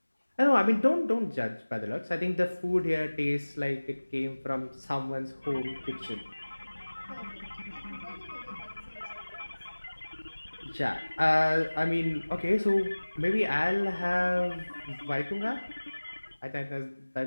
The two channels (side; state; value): both; inverted; correlation -1.00